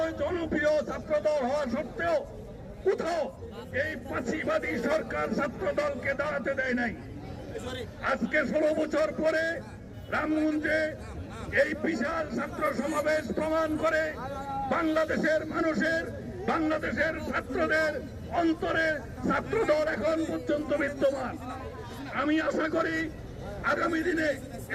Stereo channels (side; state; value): both; identical; correlation 1.00